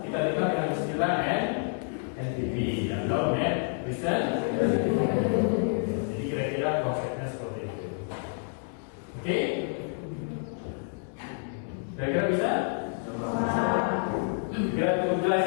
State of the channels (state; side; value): silent; right; 59 dB below the other